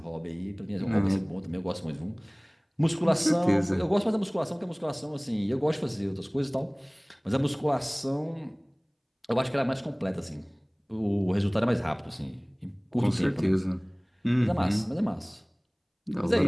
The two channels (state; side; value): identical; both; correlation 1.00